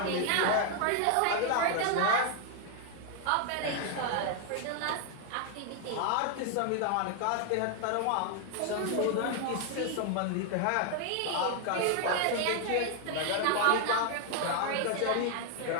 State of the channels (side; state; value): both; different; correlation 0.00